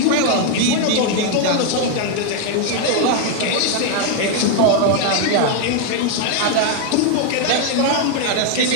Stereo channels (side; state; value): both; different; correlation 0.01